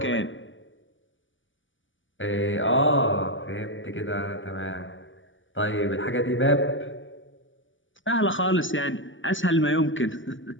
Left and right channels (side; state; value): right; late; 0.56 ms